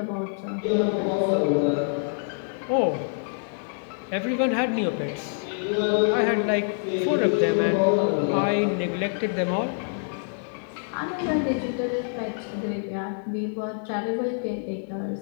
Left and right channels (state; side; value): silent; right; 61 dB below the other